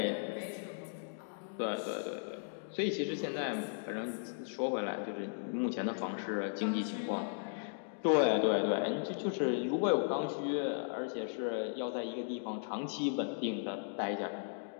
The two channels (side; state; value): right; silent; digital silence